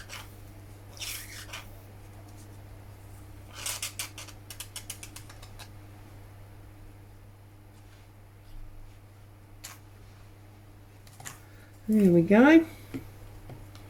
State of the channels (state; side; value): identical; both; correlation 1.00